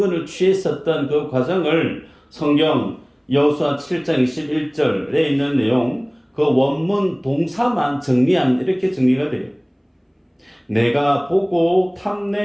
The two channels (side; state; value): both; identical; correlation 1.00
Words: 취했었던 그 과정을 성경 여호수아 7장 21절에 있는 내용 그 원문 동사만 정리하면 이렇게 정리가 돼요. 내가 보고